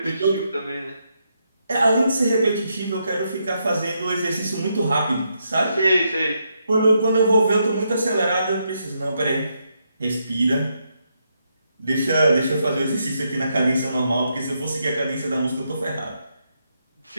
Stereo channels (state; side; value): inverted; both; correlation -0.80